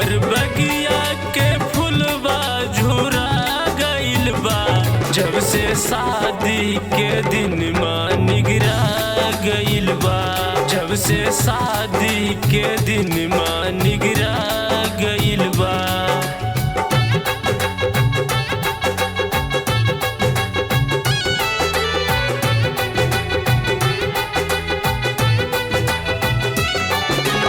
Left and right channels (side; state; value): both; identical; correlation 1.00